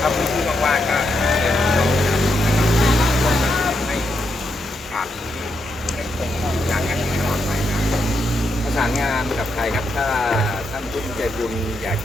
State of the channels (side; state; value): both; normal; correlation 0.81